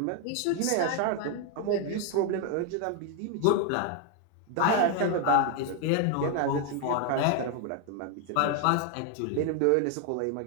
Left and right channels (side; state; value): both; different; correlation 0.00